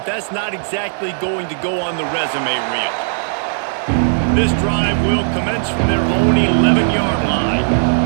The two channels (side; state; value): left; silent; digital silence